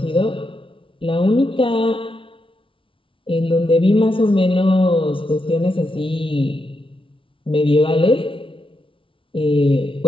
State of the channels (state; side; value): late; right; 0.25 ms